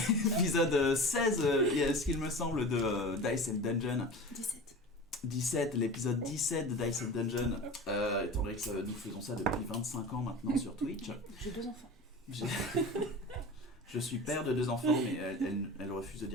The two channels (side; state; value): both; normal; correlation 0.34